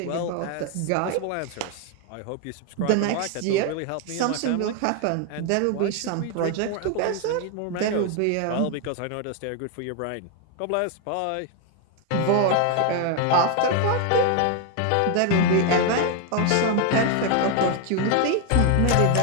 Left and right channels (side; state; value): both; different; correlation 0.01